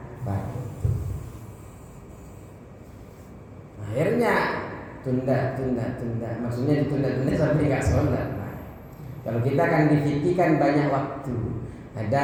pagi. Akhirnya tunda, maksudnya ditunda-tunda sampai nggak sholat. Nah, kalau kita kan difikirkan banyak waktu.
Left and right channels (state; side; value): identical; both; correlation 1.00